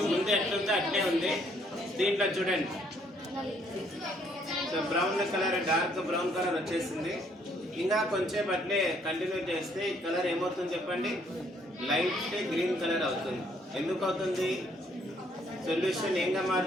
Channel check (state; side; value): normal; both; correlation 0.67